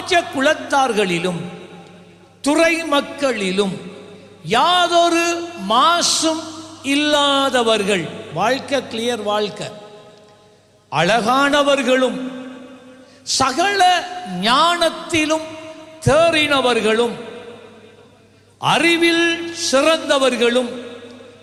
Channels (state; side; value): identical; both; correlation 1.00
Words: துறை மக்களிலும் யாதொரு மாசும் இல்லாதவர்கள், வாழ்க்கை கிளியர் வாழ்க்கை, அழகானவர்களும் சகல ஞானத்திலும் தேறினவர்களும் அறிவில் சிறந்தவர்களும்